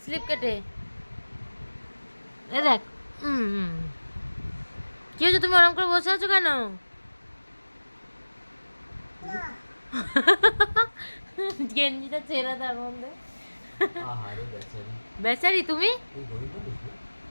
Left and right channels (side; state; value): both; inverted; correlation -1.00